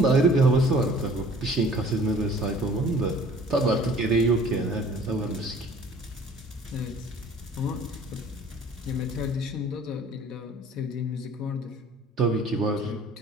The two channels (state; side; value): normal; both; correlation 0.51